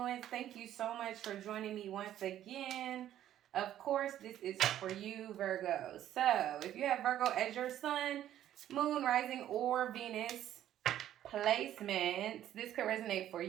Thank you so much for joining me once again. Of course, this is for you, Virgo. So, if you have Virgo as your sun, moon, rising, or Venus placements, this could resonate for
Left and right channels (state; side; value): quieter; left; 11.9 dB